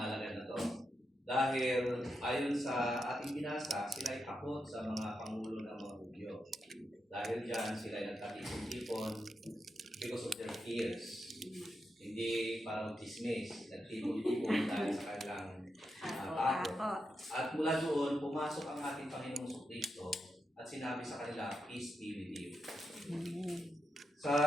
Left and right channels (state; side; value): normal; both; correlation 0.86